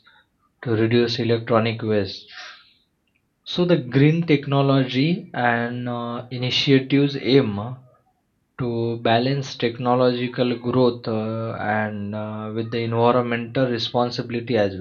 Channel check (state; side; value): identical; both; correlation 1.00